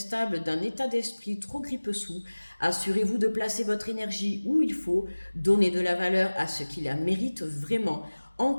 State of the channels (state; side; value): inverted; both; correlation -1.00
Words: d'un état d'esprit trop grippe-sous. Assurez-vous de placer votre énergie où il faut, donnez de la valeur à ce qui la mérite vraiment. En